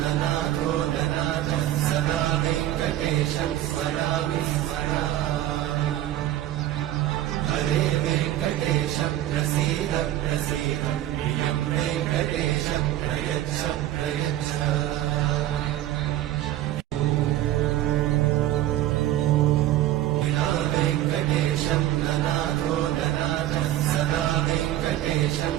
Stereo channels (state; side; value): quieter; left; 13.5 dB